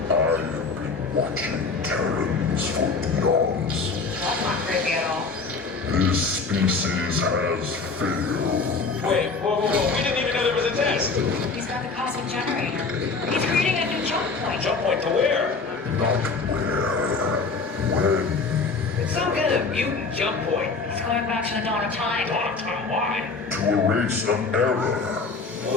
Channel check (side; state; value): right; quieter; 4.3 dB